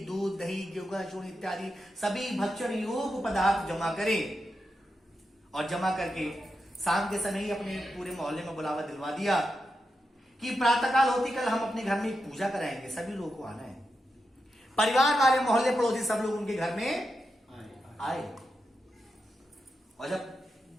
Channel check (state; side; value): normal; both; correlation 0.88